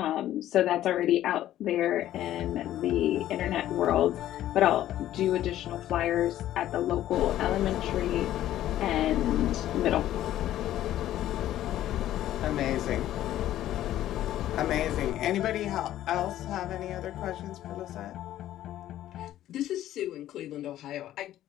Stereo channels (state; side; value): quieter; right; 13.0 dB